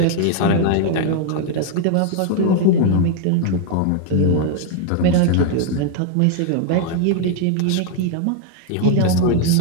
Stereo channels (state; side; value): different; both; correlation 0.00